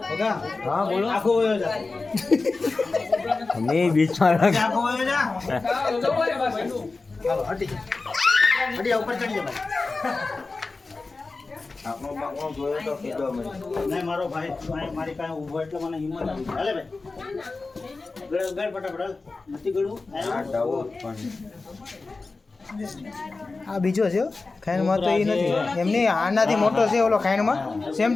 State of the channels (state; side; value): quieter; right; 3.8 dB